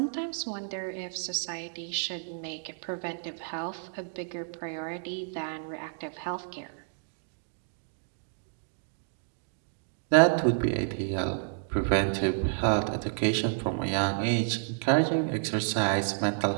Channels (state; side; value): silent; left; digital silence